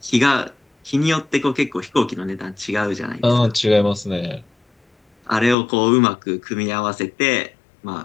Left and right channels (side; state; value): right; drops out; at 5.6 s